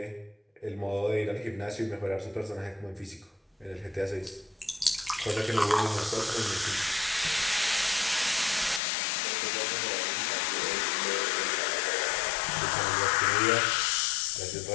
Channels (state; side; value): drops out; right; at 8.8 s